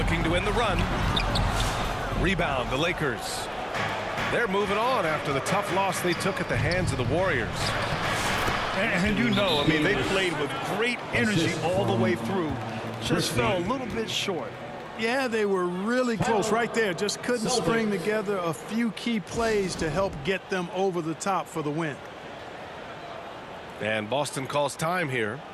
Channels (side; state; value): both; identical; correlation 1.00